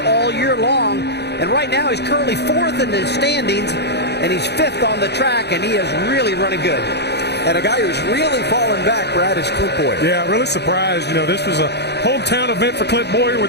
all year long. And right now he's currently 4th in the standings, and he's 5th on the track, and he is really running good. And a guy who's really fallen back, Brad, is Clint Boyer. Yeah, really surprised. You know, this was a hometown event for Clint Boyer. We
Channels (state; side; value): late; right; 0.49 ms